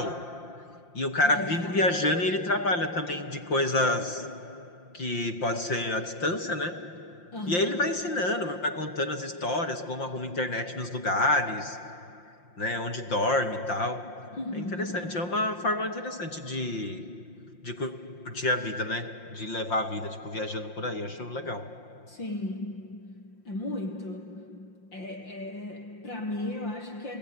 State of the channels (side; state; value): right; late; 5.7 ms